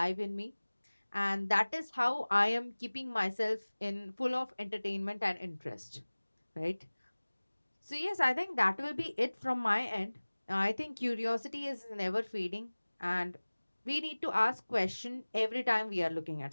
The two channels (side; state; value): both; inverted; correlation -1.00